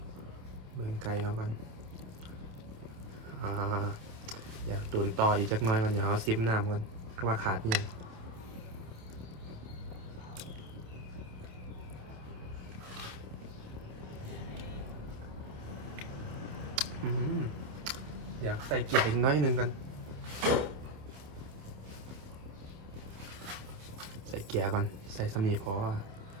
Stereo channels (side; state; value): left; late; 28 ms